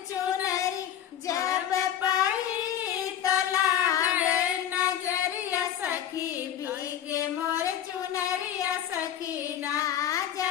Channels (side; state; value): right; quieter; 10.2 dB